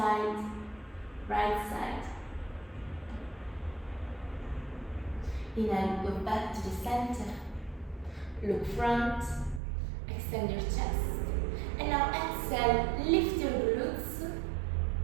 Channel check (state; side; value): drops out; left; at 9.6 s